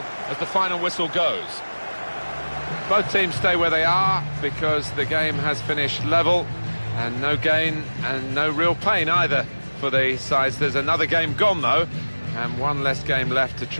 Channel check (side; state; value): both; inverted; correlation -1.00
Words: as the final whistle goes. Both teams stay where they are because the game has finished level, and no gain and no real pain either for the sides. There's another game gone though, and one less game left to